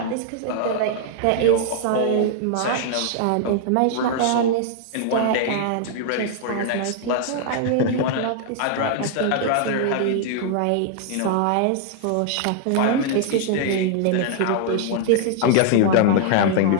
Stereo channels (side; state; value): both; different; correlation -0.01